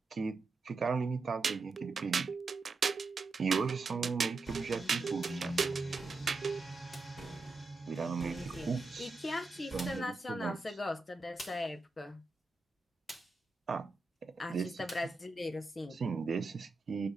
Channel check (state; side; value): quieter; left; 3.6 dB